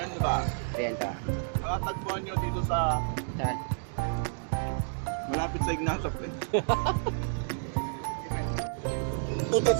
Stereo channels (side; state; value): left; silent; digital silence